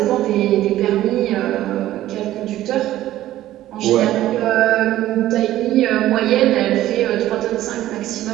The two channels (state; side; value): quieter; left; 14.1 dB